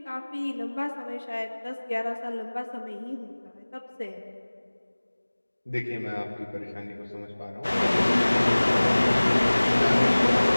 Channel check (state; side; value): inverted; both; correlation -1.00